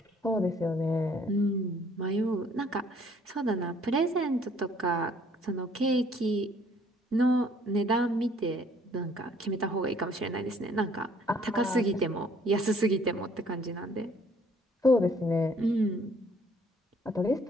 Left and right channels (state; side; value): normal; both; correlation 0.60